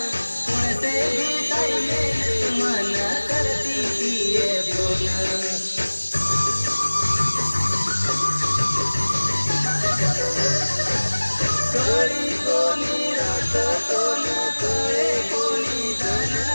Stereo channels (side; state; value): both; inverted; correlation -1.00